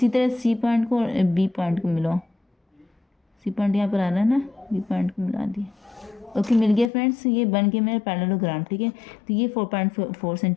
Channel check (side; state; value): right; drops out; at 6.9 s